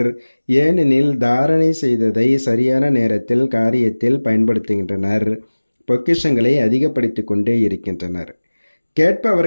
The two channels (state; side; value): inverted; both; correlation -1.00